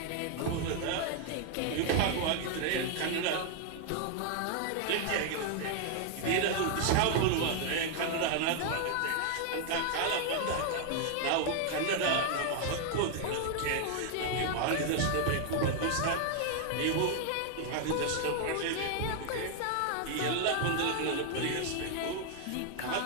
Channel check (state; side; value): different; both; correlation 0.00